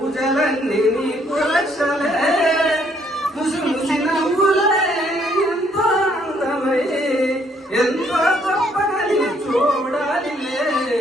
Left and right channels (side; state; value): both; normal; correlation 0.67